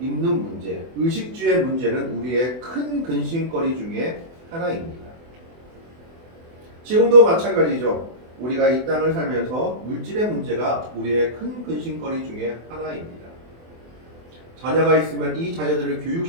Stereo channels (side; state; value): left; late; 24 ms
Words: 문제, 의식주의 문제는 우리의 큰 근심거리 중에 하나입니다. 지금도 마찬가지죠. 우리가 이 땅을 살면서 물질의 문제가 우리의 큰 근심거리 중에 하나입니다. 자녀가 있으면 이 자녀들을